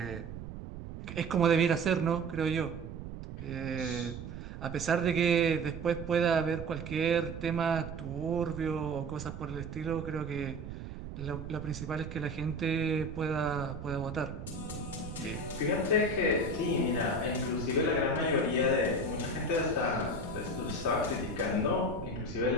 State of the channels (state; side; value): noise; right; rumble, 9 dB below the sound